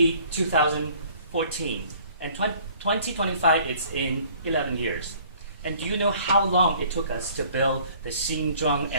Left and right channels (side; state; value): both; inverted; correlation -0.55